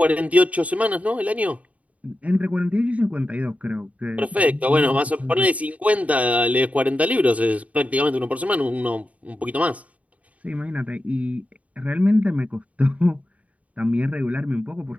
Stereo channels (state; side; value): late; left; 0.068 ms